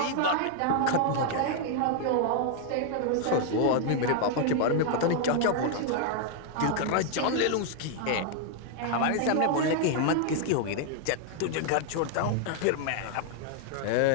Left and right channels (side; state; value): both; different; correlation 0.00